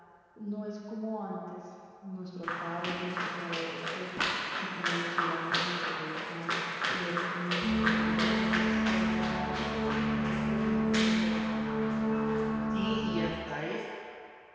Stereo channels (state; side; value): identical; both; correlation 1.00